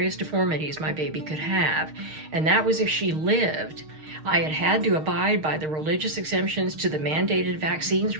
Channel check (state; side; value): late; left; 6.5 ms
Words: deformities my baby could have, and that was if she lived. I had had to abide by the religious exemptions to the mandated vaccines